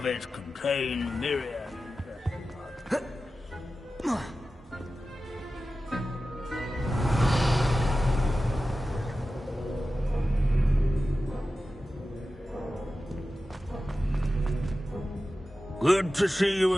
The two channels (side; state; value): both; normal; correlation 0.94